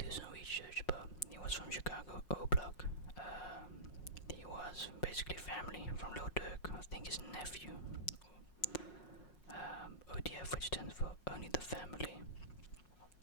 some research, but he was from Chicago, O-Block. He was basically family from Lil Durk, I think his nephew. ODF, which stands for Only the Family,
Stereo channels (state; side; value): late; right; 5.5 ms